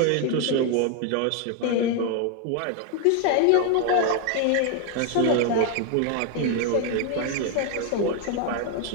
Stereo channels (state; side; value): different; both; correlation 0.01